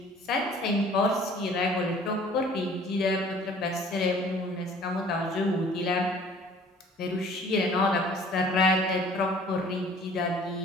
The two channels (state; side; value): normal; both; correlation 0.52